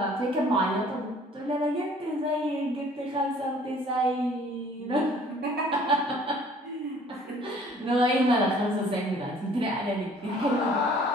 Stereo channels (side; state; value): both; normal; correlation 0.54